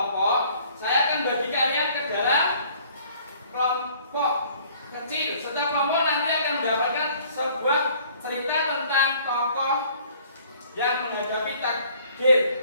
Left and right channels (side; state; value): both; inverted; correlation -0.56